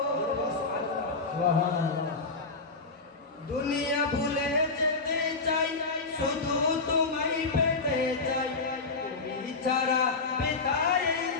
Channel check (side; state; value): right; quieter; 4.0 dB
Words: সুবহানাল্লাহ দুনিয়া ভুলে যেতে চাই শুধু তোমায় পেতে চাই তুমি ছাড়া বেতাই